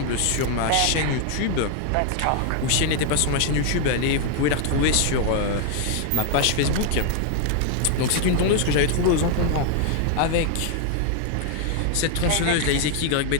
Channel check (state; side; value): different; both; correlation 0.00